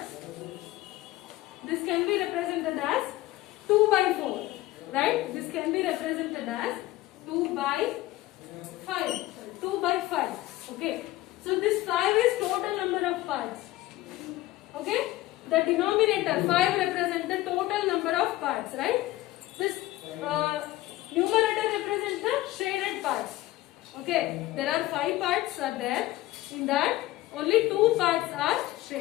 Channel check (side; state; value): right; quieter; 17.1 dB